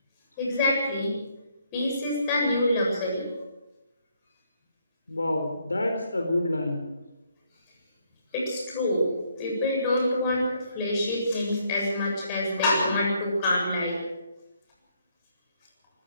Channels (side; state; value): both; inverted; correlation -0.71